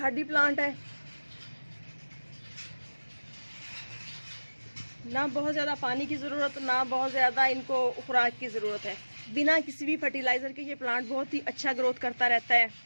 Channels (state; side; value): inverted; both; correlation -1.00